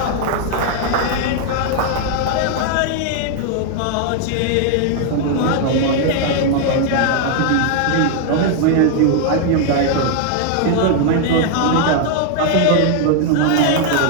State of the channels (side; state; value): both; different; correlation 0.00